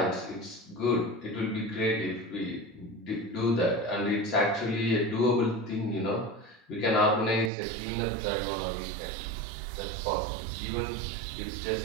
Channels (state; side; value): drops out; left; at 7.5 s